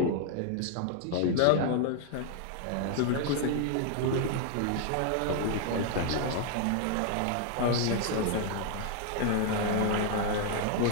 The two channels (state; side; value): different; both; correlation 0.00